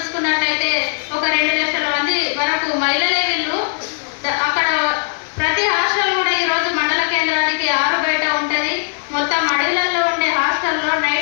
ఒక 2 లక్షల మంది వరకు మహిళలే వీళ్ళు. అక్కడ ప్రతి హాస్టల్ కూడా ఈరోజు మండల కేంద్రానికి 6 బయట ఉంటుంది. మొత్తం అడవులలో ఉండే హాస్టల్లో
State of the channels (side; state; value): right; silent; 67 dB below the other